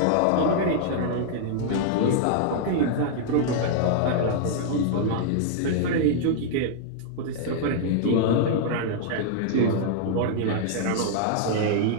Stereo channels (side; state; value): both; different; correlation -0.01